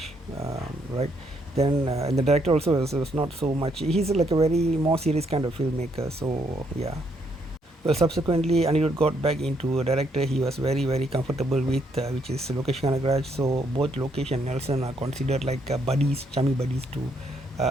right? Then and the director also was not so much. He's like a very more serious kind of filmmaker. So yeah. Well, subsequently, Anirudh got back into a director he was very comfortable with, which is Lokesh Kanagaraj. So both Lokesh and Nelson are considered like buddies, chummy buddies to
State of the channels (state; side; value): normal; both; correlation 0.73